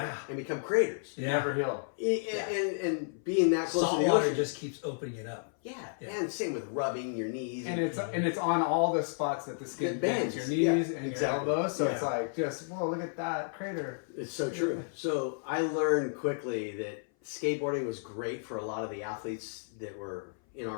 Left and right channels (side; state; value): right; silent; 56 dB below the other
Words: and become craters. Yeah. Never heal. And being that close Salt to the water ocean, just keeps opening it up. yeah. Yeah. And same with rubbing your knees. And it's on all the spots that the skin It bends, bends. your knees Yeah, and exactly. your elbows. So it's Yeah. like, just, whoa, look at that crater. It's so true. So I learned quickly that skateboarding was great for a lot of the athletes that were in